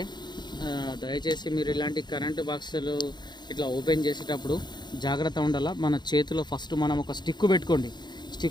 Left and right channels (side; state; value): right; late; 0.21 ms